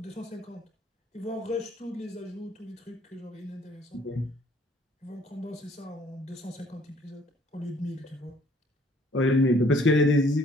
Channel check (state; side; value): normal; both; correlation 0.60